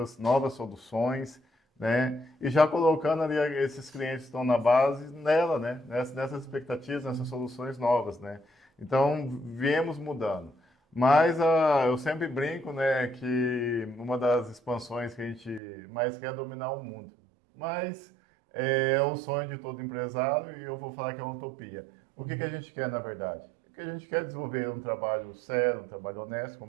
novas soluções, né? E já colocando ali esses clientes que estão na base nela, né? Nessas expectativas, nessas soluções novas, né? Então, viemos mudando. Mas eu sempre brinco, né, que uma das expansões que a gente mais quer é dominar o mundo. Mas é o sonho de todo empresário e eu vou falar que é uma utopia. O que a gente quer, na verdade? O que a gente quer é desenvolver um trabalho sério, um trabalho honesto,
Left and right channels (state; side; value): drops out; left; at 15.6 s